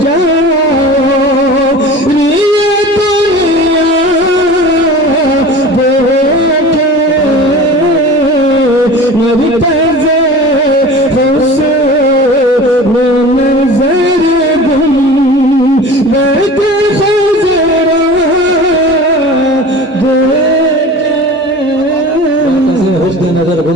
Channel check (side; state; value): both; normal; correlation 0.37